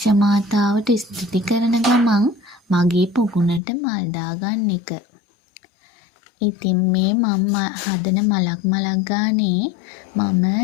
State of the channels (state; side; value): drops out; right; at 3.6 s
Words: මාතාවට ස්තුති කරන ගමන් මගේ පොකුණට මල් දාගන්න එක. ඉතින් මේ මම හදන මලක් ගානේ මම